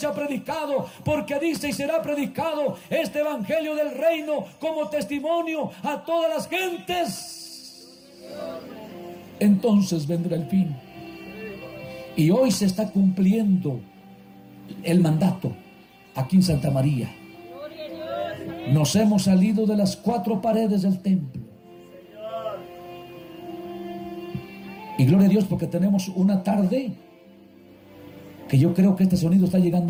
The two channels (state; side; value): identical; both; correlation 1.00